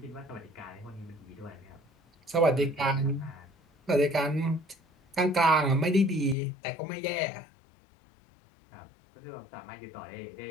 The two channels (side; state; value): right; drops out; at 6.4 s